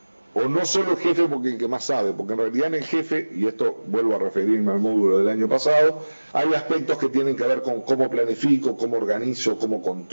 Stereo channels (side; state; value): both; inverted; correlation -1.00